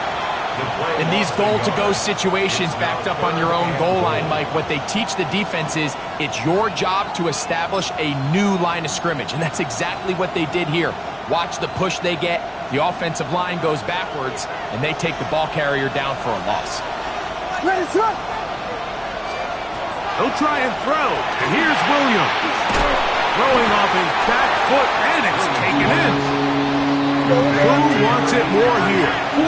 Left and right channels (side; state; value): both; identical; correlation 1.00